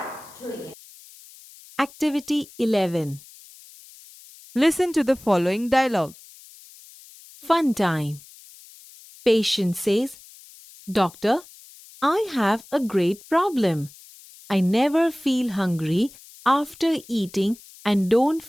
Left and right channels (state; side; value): noise; left; hiss, 22 dB below the sound